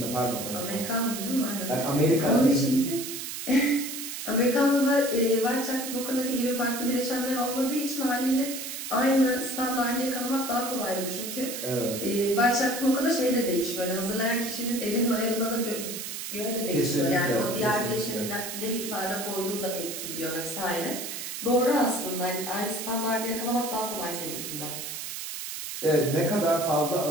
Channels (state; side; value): noise; right; hiss, 6 dB below the sound